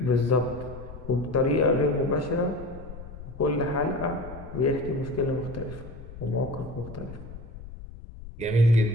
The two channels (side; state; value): left; noise; rumble, 14 dB below the sound